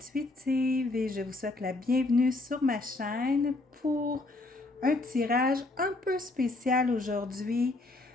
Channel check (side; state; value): right; quieter; 3.0 dB